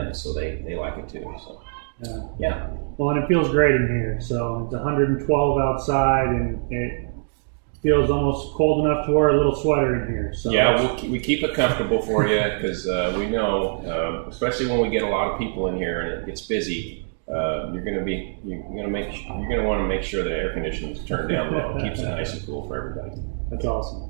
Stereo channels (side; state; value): left; silent; digital silence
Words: so they like it too. So, yeah. Well, and it feels great in here. So it's 112 outside, and it feels almost cold enough to wear a little sweater in here. So yeah, we keep it comfortable for you because we know, especially when we get a lot of people in here and it gets busy. You're going to want to make sure the air conditioning is turned down low. It keeps it nice and cool for everybody. That's